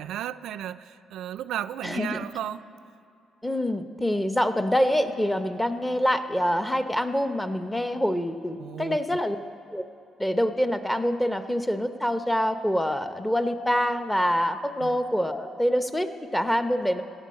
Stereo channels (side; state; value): both; normal; correlation 0.94